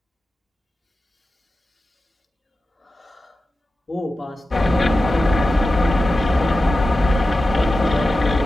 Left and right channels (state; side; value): normal; both; correlation 0.93